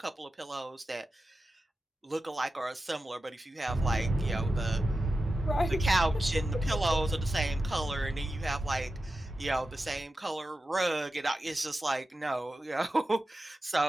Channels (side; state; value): both; normal; correlation 0.92